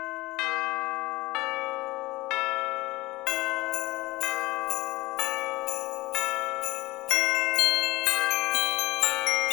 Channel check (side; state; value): right; quieter; 20.1 dB